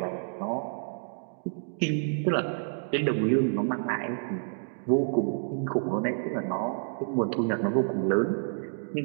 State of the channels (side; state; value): left; silent; digital silence